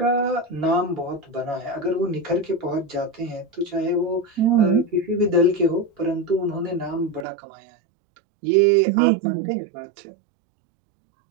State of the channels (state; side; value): drops out; left; at 7.2 s